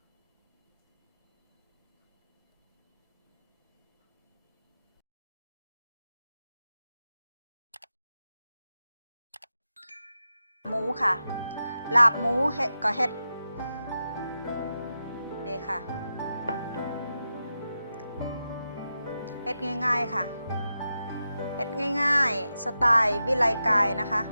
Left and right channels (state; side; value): inverted; both; correlation -0.90